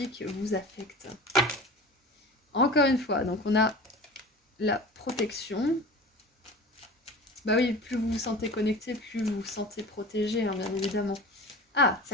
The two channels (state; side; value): normal; both; correlation 0.36